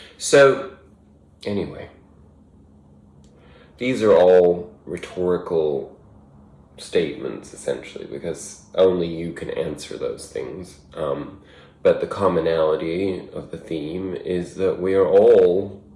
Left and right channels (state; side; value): identical; both; correlation 1.00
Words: So, anyway, these are all rhetorical statements, essentially, because only you can answer those things. But the commonality of the theme is that we are all